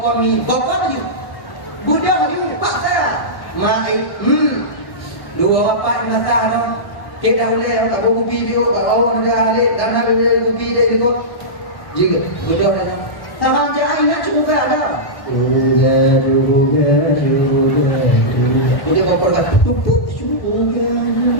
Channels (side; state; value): right; late; 1.1 ms